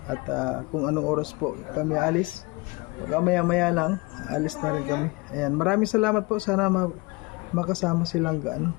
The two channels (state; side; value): quieter; right; 25.8 dB